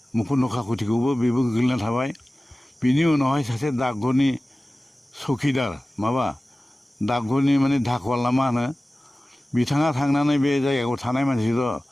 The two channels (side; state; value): both; normal; correlation 0.97